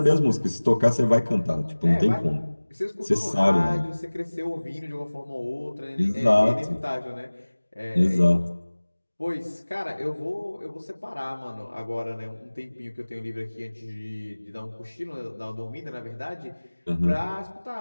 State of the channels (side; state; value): both; inverted; correlation -1.00